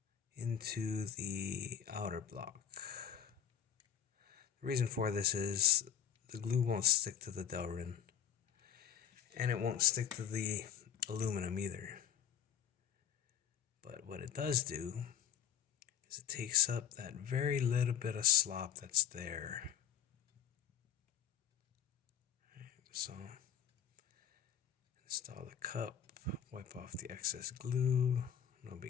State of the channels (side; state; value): right; quieter; 9.1 dB